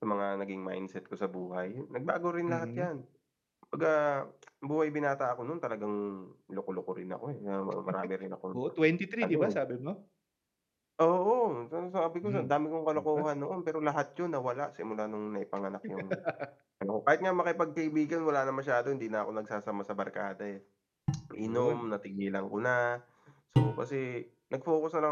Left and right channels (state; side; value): identical; both; correlation 1.00